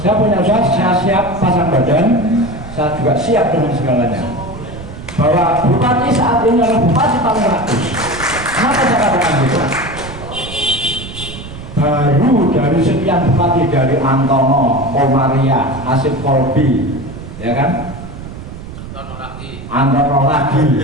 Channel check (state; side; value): noise; right; rumble, 12 dB below the sound